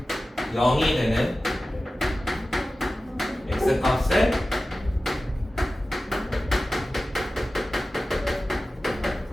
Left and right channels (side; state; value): both; normal; correlation 0.95